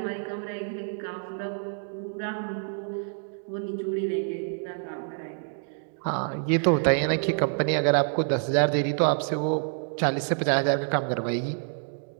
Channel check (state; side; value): silent; left; digital silence